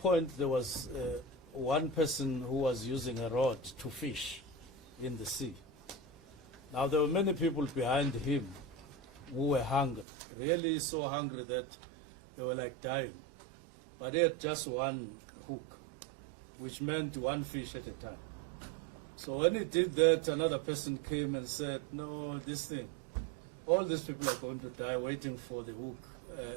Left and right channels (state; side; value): drops out; left; at 10.1 s